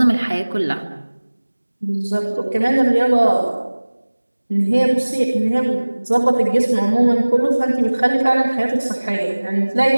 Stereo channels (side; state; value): both; inverted; correlation -1.00